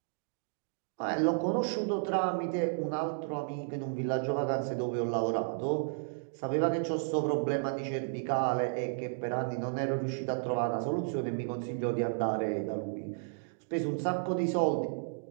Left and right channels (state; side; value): silent; left; digital silence